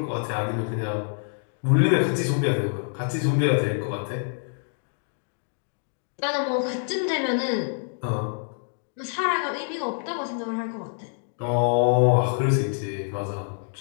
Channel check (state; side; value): silent; right; digital silence